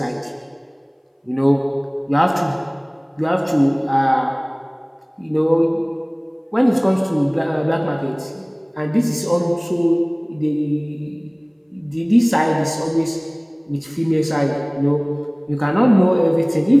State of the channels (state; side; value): identical; both; correlation 1.00